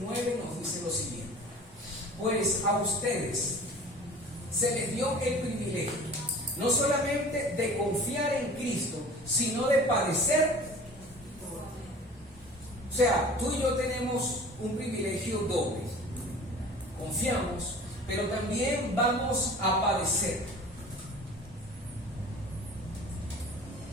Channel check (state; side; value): normal; both; correlation 0.43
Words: nos dice lo siguiente: pues a ustedes se les dio el privilegio no solamente de confiar en Cristo, sino de padecer. O sea, tú y yo tenemos un privilegio doble. Confiamos, pero también vamos a padecer.